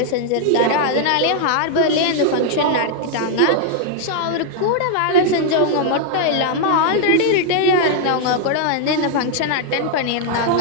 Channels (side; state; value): both; different; correlation 0.00